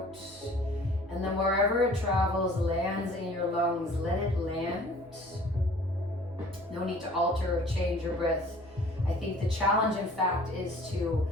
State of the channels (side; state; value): right; noise; hum, 25 dB below the sound